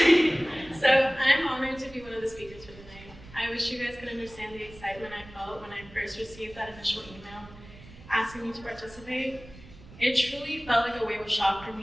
So I'm honored to be one of the speakers for the night. I wish you guys could understand the excitement I felt when I first received that initial email asking me to participate. It truly felt like a wave of shock for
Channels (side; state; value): right; noise; rumble, 19 dB below the sound